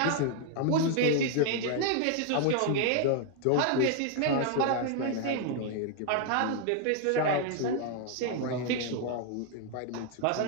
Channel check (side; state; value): both; different; correlation 0.00